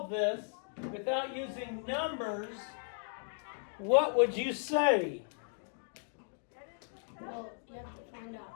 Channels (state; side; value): silent; right; digital silence